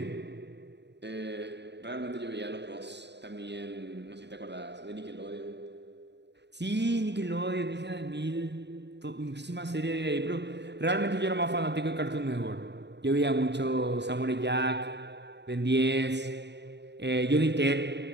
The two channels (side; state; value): left; late; 0.50 ms